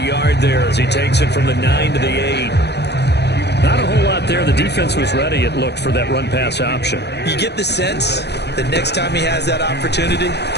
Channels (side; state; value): right; late; 0.49 ms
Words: there as he takes it from the 9 to the 8. Not a whole lot there. The defense was ready, it looked, for that run-pass option. You get the sense that next time he has that opportunity,